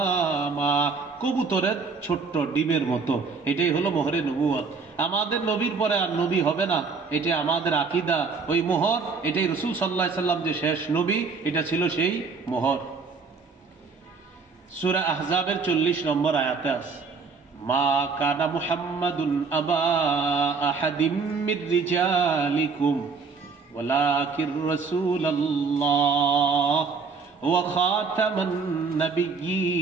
কবুতরের ছোট্ট ডিমের মতো, এটাই হলো মোহরে নবুয়ত। আমাদের নবীর পরে আর নবী হবে না, এটা আমাদের আকীদা। ওই মোহর, এটাই রাসূল সাল্লাল্লাহু আলাইহি সাল্লাম যে শেষ নবী, এটা ছিল সেই মোহর। সূরা আহজাবের 40 নম্বর আয়াতে আছে, মা কানা মুহাম্মাদুন আবা আহাদিম মির রিজালিকুম ওয়ালাকির রাসূলুল্লাহ ওয়া খাতামান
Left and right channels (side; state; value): left; quieter; 4.9 dB